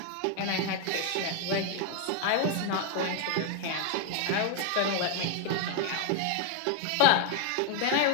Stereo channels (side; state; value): both; different; correlation 0.01